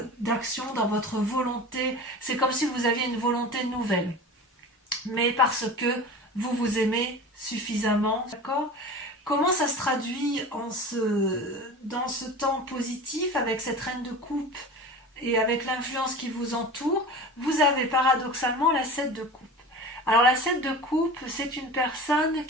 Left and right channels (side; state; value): both; normal; correlation 0.35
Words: d'action, dans votre volonté. C'est comme si vous aviez une volonté nouvelle, mais parce que vous vous aimez suffisamment, d'accord ? Comment ça se traduit dans ce temps positif avec cette reine de coupe et avec l'influence qui vous entoure? Vous avez paradoxalement la 7 de coupe. Alors la 7 de coupe, c'est une personne